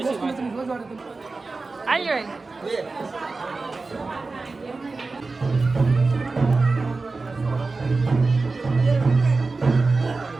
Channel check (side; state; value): left; quieter; 3.8 dB